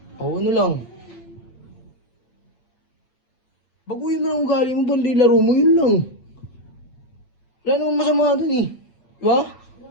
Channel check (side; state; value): right; late; 8.0 ms